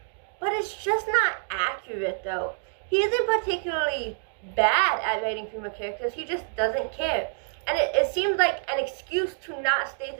but it's just not accurate though. He isn't particularly bad at writing female characters, he just doesn't care. And it seems like an excuse to not state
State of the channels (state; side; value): silent; left; 60 dB below the other